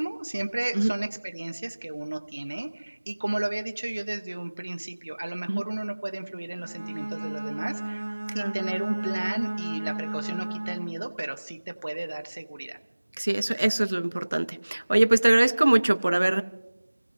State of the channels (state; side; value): inverted; both; correlation -1.00